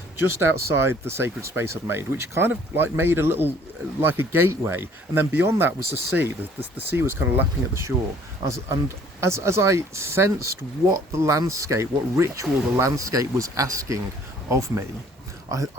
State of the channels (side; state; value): both; normal; correlation 0.56